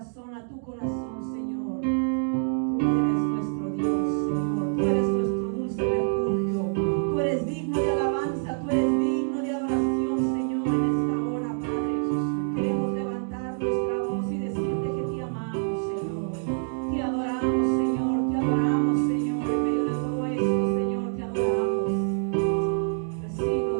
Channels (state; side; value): silent; left; digital silence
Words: a tu corazón, Señor. Tú eres nuestro Dios, Señor. Tú eres nuestro dulce refugio. Tú eres digno de alabanza. Tú eres digno de adoración, Señor, en esta hora, Padre. Queremos levantar nuestra voz y decirte que te amamos, Señor. Te adoramos, Señor. Te adoramos, Señor. En medio de todo esto, Señor, te adoramos. Recibe,